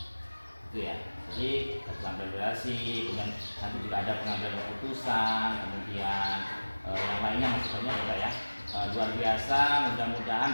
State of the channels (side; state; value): both; inverted; correlation -1.00